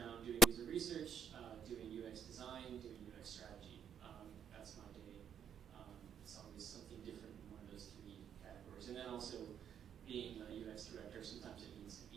doing user research, doing UX design, doing UX strategy. That's my day. It's always something different in one of those three categories. And then also being a UX director, sometimes it means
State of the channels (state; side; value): normal; both; correlation 0.74